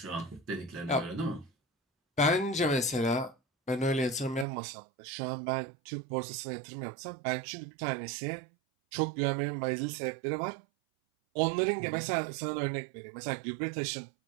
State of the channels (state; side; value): drops out; left; at 4.5 s